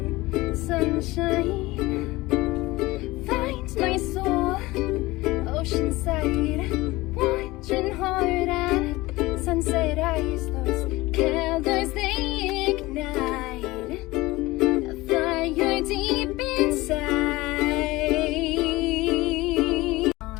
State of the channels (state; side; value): quieter; right; 20.1 dB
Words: sunshine. Find my soul, oceanside, watching hard at sunset eyes. Those candles they ignite a fire deep